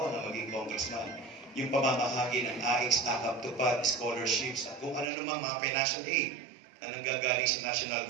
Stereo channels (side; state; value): left; drops out; at 5.1 s